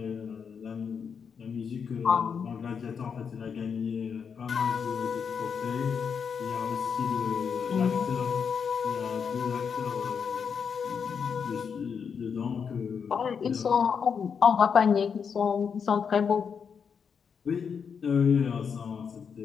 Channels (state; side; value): quieter; right; 6.5 dB